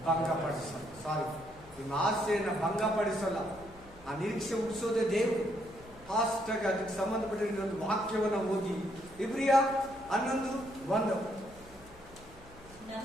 ಭಂಗಪಡಿಸಲ್ಲ. ನಿಮ್ಮ ಆಸೆಯನ್ನ ಭಂಗಪಡಿಸಲ್ಲ. ಆ ನಿರೀಕ್ಷೆ ಹುಟ್ಟಿಸೋದೇ ದೇವರು. ಫಾಸ್ಟ್ ಆಗಿ ಅದಕ್ಕೆ ಸಂಬಂಧಪಟ್ಟ ಇನ್ನೊಂದು ವಾಕ್ಯವನ್ನ ಓದಿ. ಇಬ್ರಿಯ 11:1.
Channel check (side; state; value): left; noise; hum, 23 dB below the sound